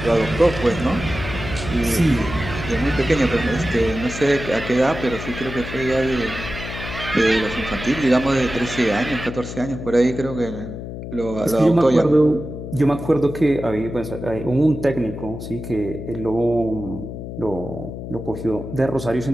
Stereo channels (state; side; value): noise; left; hum, 9 dB below the sound